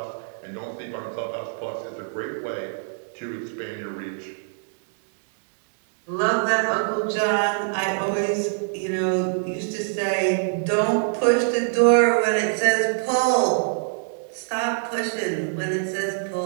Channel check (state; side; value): silent; left; digital silence